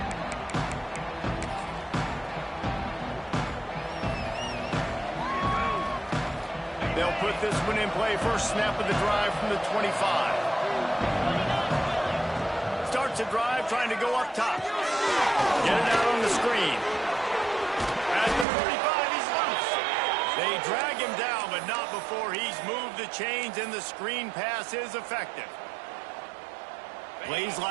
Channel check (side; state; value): left; drops out; at 18.4 s